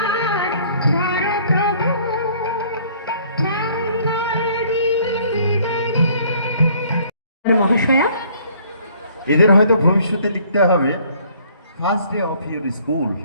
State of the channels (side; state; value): both; inverted; correlation -0.59